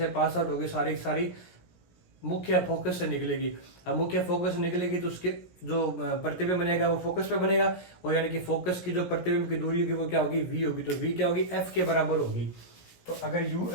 पास आउट होगी, सारी सारी मुख्य फोकस से निकलेगी। अब मुख्य फोकस से निकलेगी तो उसके जो प्रतिबिंब बनेगा वो फोकस पे बनेगा, और यानी कि फोकस की जो प्रतिबिंब की दूरी होगी वो क्या होगी V होगी, तो V क्या होगी F के बराबर होगी। तो अगर U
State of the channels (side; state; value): right; late; 17 ms